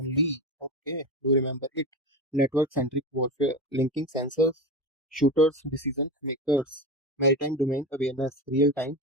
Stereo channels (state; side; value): normal; both; correlation 0.22